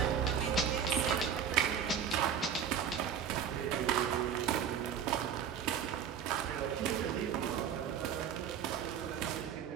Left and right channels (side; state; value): left; quieter; 8.2 dB